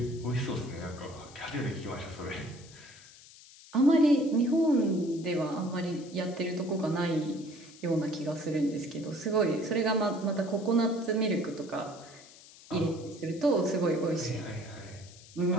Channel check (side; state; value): left; noise; hiss, 21 dB below the sound